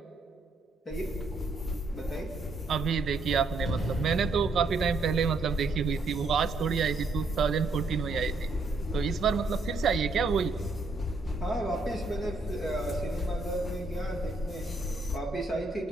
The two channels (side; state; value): left; quieter; 3.3 dB